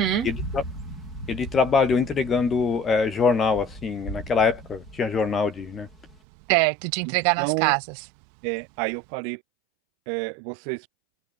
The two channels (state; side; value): drops out; left; at 6.2 s